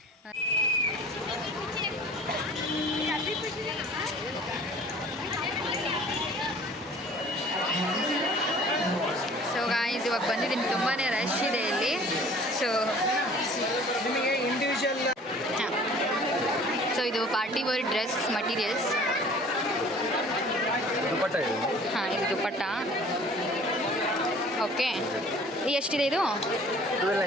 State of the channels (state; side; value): normal; both; correlation 0.49